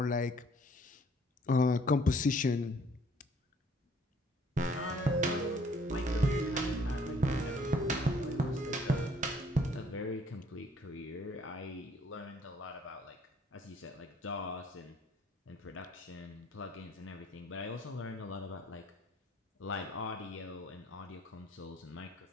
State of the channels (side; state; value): both; normal; correlation 0.60